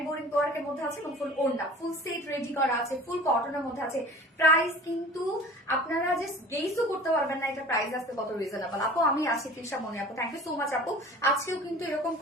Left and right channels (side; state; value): both; normal; correlation 0.42